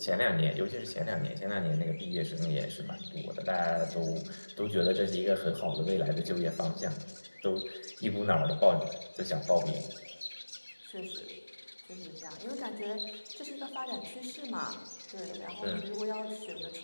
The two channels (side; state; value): both; inverted; correlation -1.00